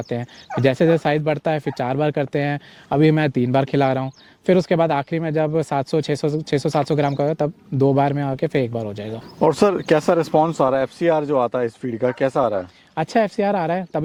हैं, जैसे साइज़ बढ़ता है फिर 4 बार करते हैं। अभी मैं 3 बार खिला रहा हूँ। फिर उसके बाद आखिरी में जब 600-700 ग्राम का होगा तब 2 बार में आके फिर 1 बार हो जाएगा। और सर कैसा रिस्पॉन्स आ रहा है, FCR जो आता है इस फीड का कैसा आ रहा है? अच्छा FCR आ रहा है,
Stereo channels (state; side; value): identical; both; correlation 1.00